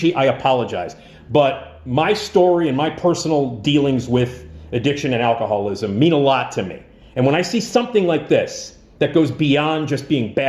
I apologize. But my story and my personal dealings with addiction and alcoholism mean a lot to me. And when I see something like this, that goes beyond just being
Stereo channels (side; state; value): both; identical; correlation 1.00